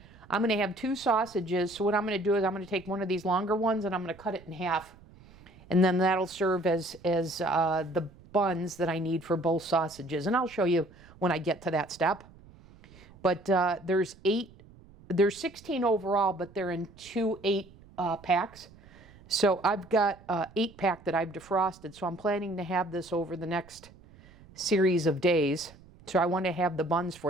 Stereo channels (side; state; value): right; noise; rumble, 23 dB below the sound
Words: I'm going to have 2 sausages. So what I'm going to do is I'm going to take one of these longer ones and I'm going to cut it in half. And then that'll serve as the buns that I need for both sausages. And I'll show you when I get to that step. But there's 16 overall, but they're in 2 8-packs. So I've got an 8-pack that I've defrosted. So I'm planning to have this over the next series of days. So I want to have the buns